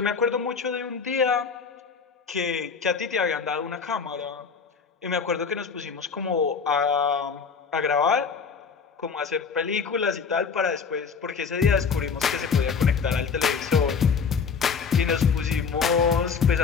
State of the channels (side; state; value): right; quieter; 5.7 dB